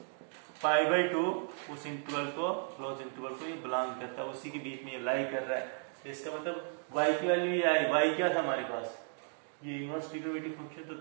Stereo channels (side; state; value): left; silent; 55 dB below the other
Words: π/2, उस इंटरवल को, क्लोज इंटरवल को ये बिलोंग करता है, उसी के बीच में ये लाई कर रहा है। तो इसका मतलब y की वैल्यू ये आई, y क्या था हमारे पास, ये इनवर्स ट्रिग्नोमेट्रिक फंक्शन। तो